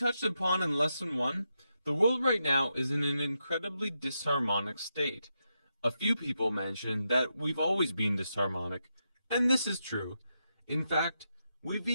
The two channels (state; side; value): inverted; both; correlation -0.85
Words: upon in Lesson 1, the world right now is in an incredibly disharmonic state. A few people mention that we've always been disharmonic, and this is true. In fact, we've